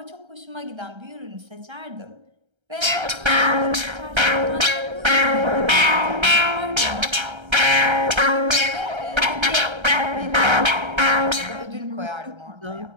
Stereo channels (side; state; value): left; late; 1.3 ms